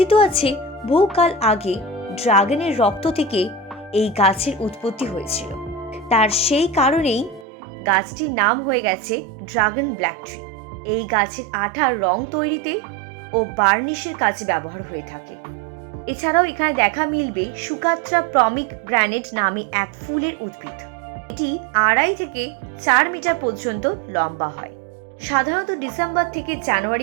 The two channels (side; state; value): left; drops out; at 7.5 s